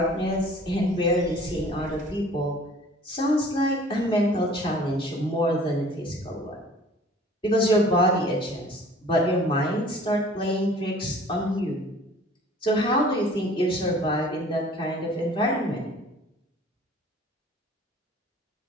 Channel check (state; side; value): normal; both; correlation 0.50